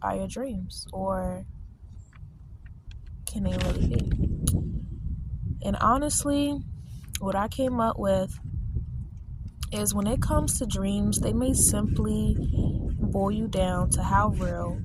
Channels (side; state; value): both; identical; correlation 1.00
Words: are your dreams? Or can they really be? And honestly, what I came up with is when it comes to dreams, they may simply boil you down to how real